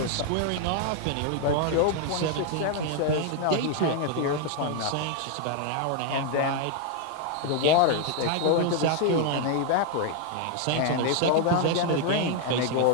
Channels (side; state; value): both; different; correlation 0.00